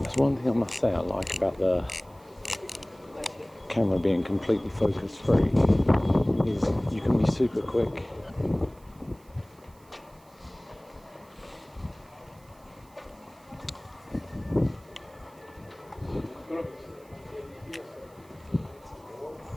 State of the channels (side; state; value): right; noise; hiss, 29 dB below the sound